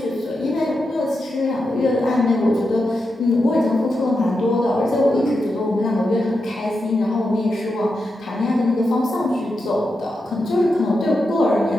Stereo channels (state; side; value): normal; both; correlation 0.87